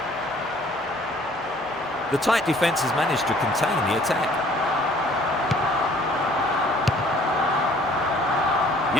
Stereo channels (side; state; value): both; normal; correlation 0.56